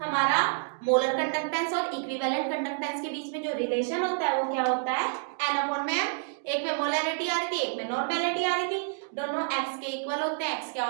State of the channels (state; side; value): silent; left; digital silence